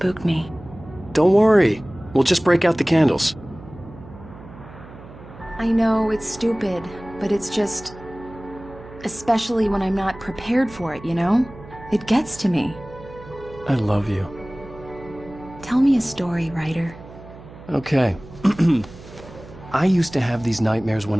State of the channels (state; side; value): noise; right; hum, 18 dB below the sound